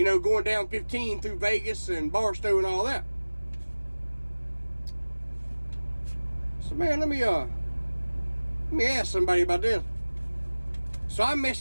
know, going down 15 through Vegas and Barstow and all that. So, man, let me ask somebody about this. So I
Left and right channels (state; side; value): inverted; both; correlation -1.00